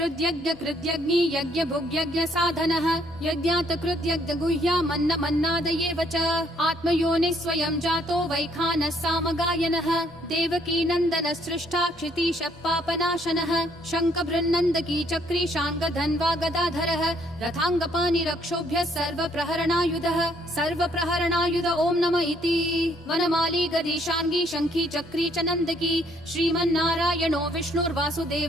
यज्ञभुग्यज्ञसाधनः यज्ञातकृत्यज्ञगुह्यामन्नमन्नादयेव च आत्मयोनिः स्वयं जातो वैखानः सामगायनः देवकी नन्दनः सृष्टा क्षितीशः पापनाशनः शङ्खभृन्नन्दकी चक्री शाङ्गधन्वा गदाधरः रथाङ्गपाणिरक्षोभ्यः सर्वप्रहरणायुधः सर्वप्रहरणायुध ॐ नमः इति वनमाली गदीशाङ्गी शङ्खी चक्री च नन्दकी श्रीमन्नारायणो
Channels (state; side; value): normal; both; correlation 0.67